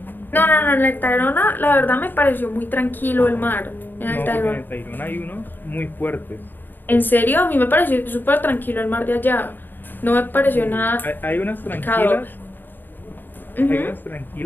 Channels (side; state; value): right; late; 0.092 ms